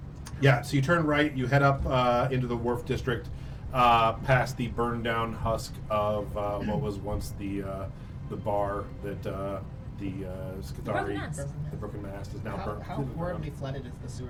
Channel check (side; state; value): both; identical; correlation 1.00